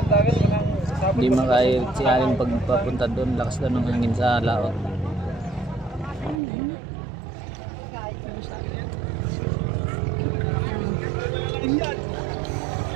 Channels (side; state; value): left; drops out; at 6.4 s